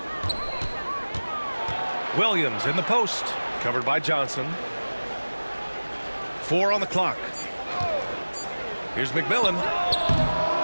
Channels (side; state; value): both; inverted; correlation -1.00